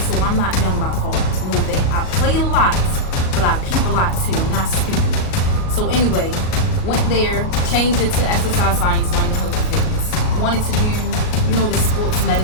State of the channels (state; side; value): late; right; 38 ms